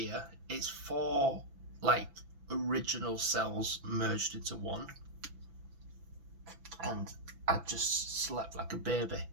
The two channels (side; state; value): left; late; 6.0 ms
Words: it's 4 like original cells merged into one, and I just slept like a baby